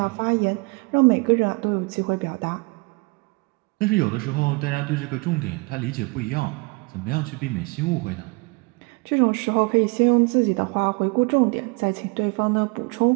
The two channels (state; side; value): quieter; left; 28.3 dB